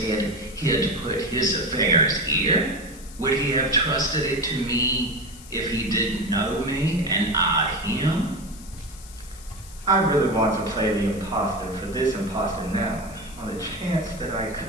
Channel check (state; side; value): noise; left; hiss, 19 dB below the sound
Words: he'd put his affairs here? Would he have trusted it to me if he didn't know me and I him? I really want to play the imposter for this imposter now, on the chance that I